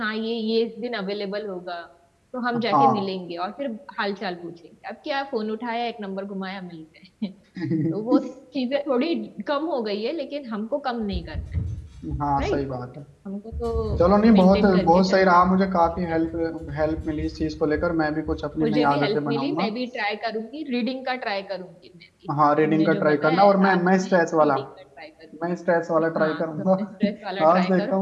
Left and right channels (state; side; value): identical; both; correlation 1.00